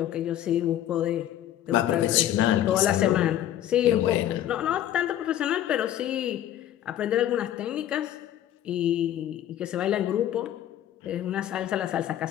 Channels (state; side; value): quieter; right; 12.0 dB